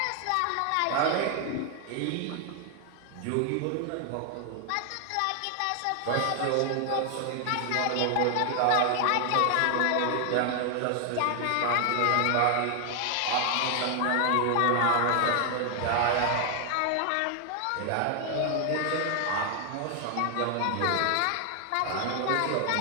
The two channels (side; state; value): both; different; correlation 0.00